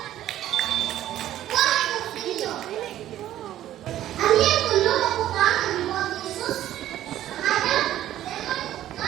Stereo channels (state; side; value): quieter; left; 12.8 dB